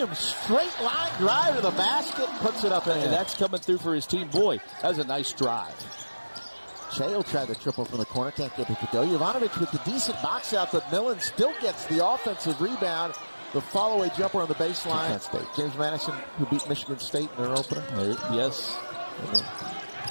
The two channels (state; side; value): inverted; both; correlation -1.00